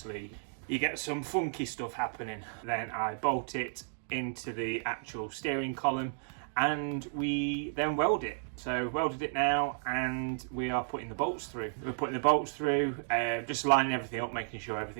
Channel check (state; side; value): silent; left; digital silence